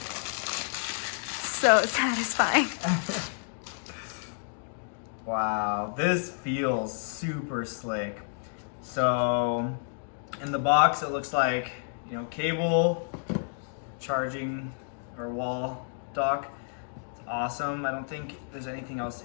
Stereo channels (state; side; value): silent; right; digital silence